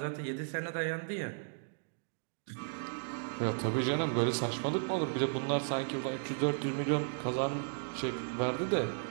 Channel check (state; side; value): silent; left; digital silence